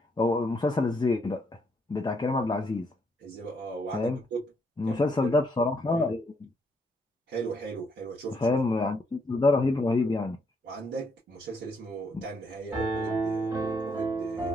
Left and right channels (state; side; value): normal; both; correlation 0.73